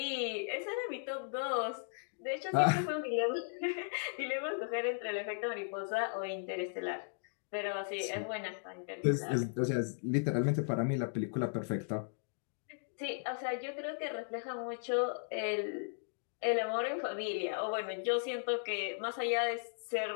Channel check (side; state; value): right; silent; digital silence